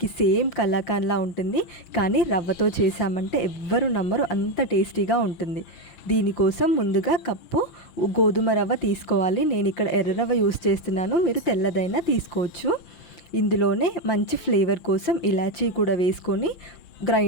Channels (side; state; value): right; late; 5.7 ms